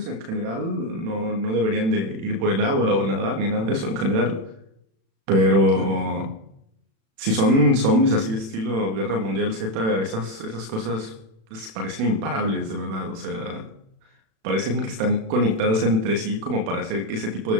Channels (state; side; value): late; left; 36 ms